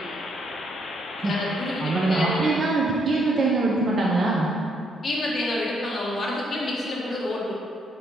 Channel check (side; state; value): both; normal; correlation 0.72